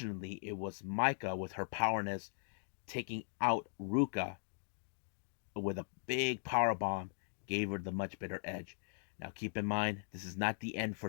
it was Maika with her powerness taking out Ruka with a big power bomb, gave her the much better edge. Now keep in mind, this is not the end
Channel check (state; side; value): silent; right; digital silence